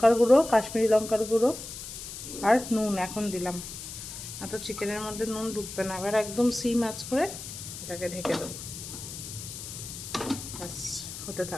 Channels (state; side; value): noise; left; hiss, 10 dB below the sound